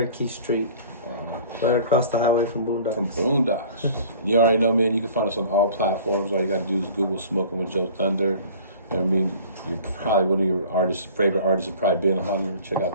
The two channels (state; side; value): inverted; both; correlation -0.47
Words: Street. Right across the highway from Boondocks. From Boondocks. You already know, man, you can find us on all platforms. All you got to do is Google Smoking with JoeThunder. You know what I mean? You're probably one of your favorite artists have probably been on. Check out